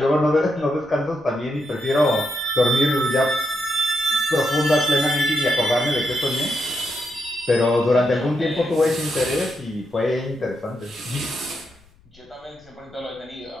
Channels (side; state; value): left; noise; rumble, 29 dB below the sound